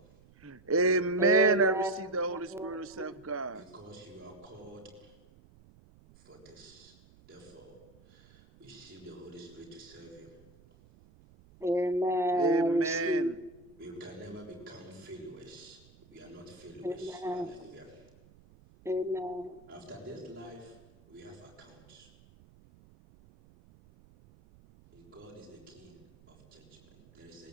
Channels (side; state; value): right; noise; rumble, 25 dB below the sound